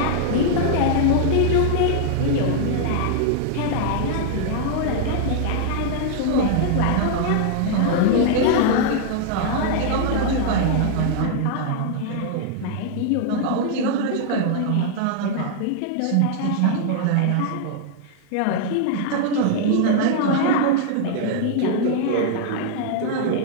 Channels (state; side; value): different; both; correlation -0.01